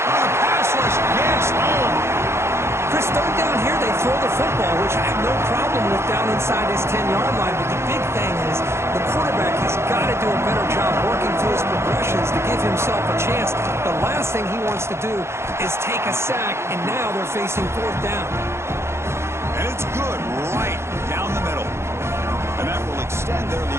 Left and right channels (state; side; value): late; left; 0.13 ms